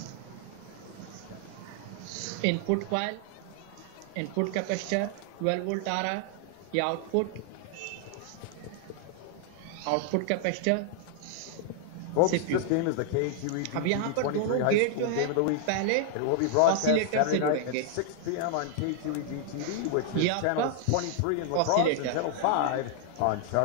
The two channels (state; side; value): different; both; correlation 0.00